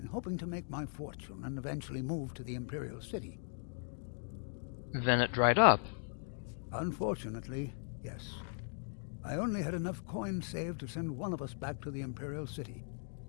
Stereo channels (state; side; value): silent; right; 52 dB below the other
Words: hoping to make my fortune and eventually move to the Imperial City. Then it dried up. Unfortunately, yes. I only had enough coins saved to send one of us back to the Imperial City.